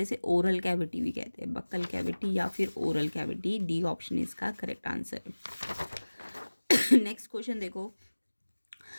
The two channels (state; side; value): inverted; both; correlation -1.00